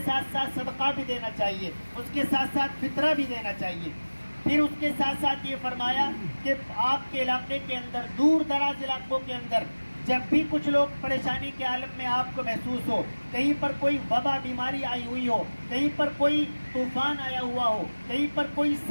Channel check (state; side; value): inverted; both; correlation -1.00